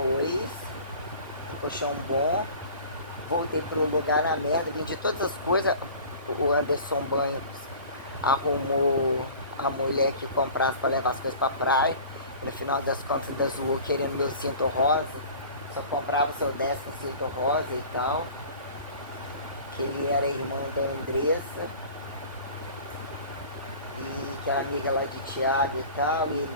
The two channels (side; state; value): both; inverted; correlation -0.43